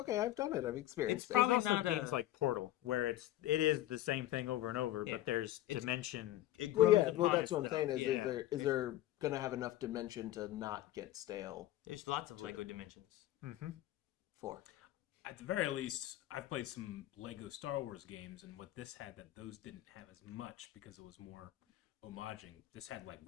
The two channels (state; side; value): quieter; right; 14.4 dB